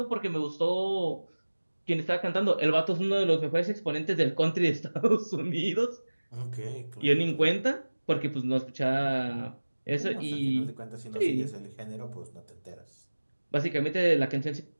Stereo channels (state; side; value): inverted; both; correlation -1.00